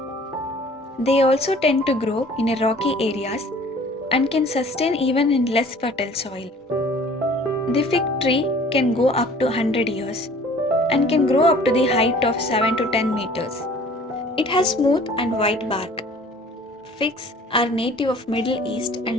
They also tend to grow in rocky areas and can sustain even in less fertile soil. The fig tree can go up to 100 years and can grow up to the height of 7 to 10 meters. It has smooth and white bark. Figs are native of Middle East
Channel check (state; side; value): normal; both; correlation 0.50